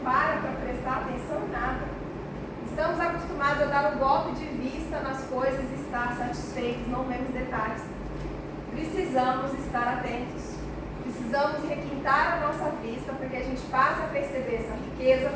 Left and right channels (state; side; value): identical; both; correlation 1.00